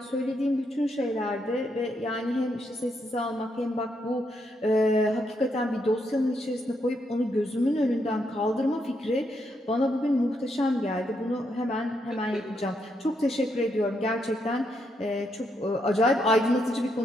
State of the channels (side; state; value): both; normal; correlation 0.78